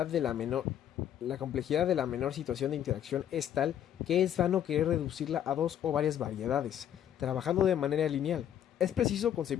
de la menor situación de interacción es tal que es vano querer reducirla a dos o varias variedades, trabajando de manera lineal. Es preciso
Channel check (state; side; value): quieter; right; 10.2 dB